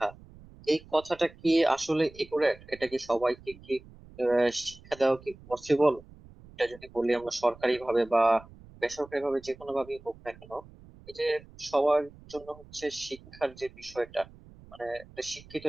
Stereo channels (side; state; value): right; noise; rumble, 22 dB below the sound